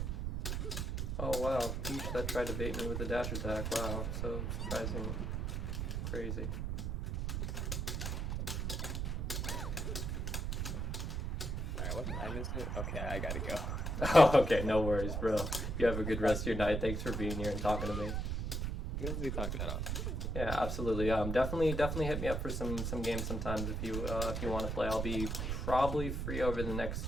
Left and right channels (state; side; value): noise; right; rumble, 1 dB below the sound